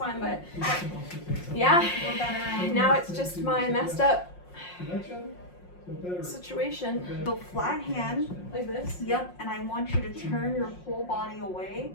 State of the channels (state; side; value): late; right; 5.6 ms